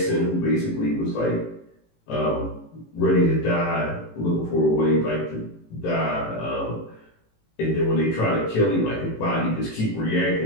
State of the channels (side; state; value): right; late; 18 ms